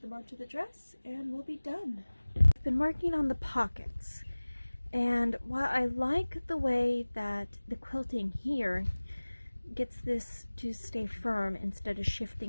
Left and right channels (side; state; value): both; inverted; correlation -1.00